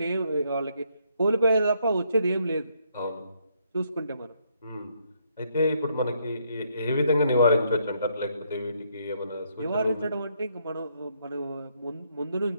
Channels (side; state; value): both; inverted; correlation -0.72